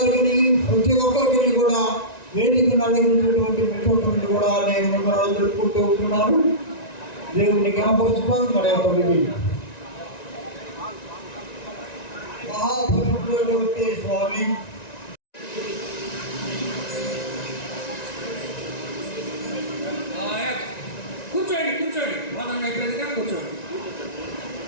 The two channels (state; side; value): late; right; 1.9 ms